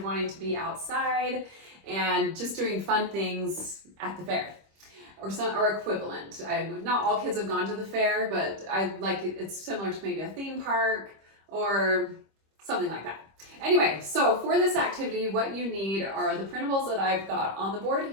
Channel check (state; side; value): late; left; 25 ms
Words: wanting to be outside and just doing fun things at the fair or equivalent. Not all kids have gone to the fair, but I like it. It's similar to maybe a theme park or something like that. Anyway, so for this activity, what you need are the printables that I've got on the board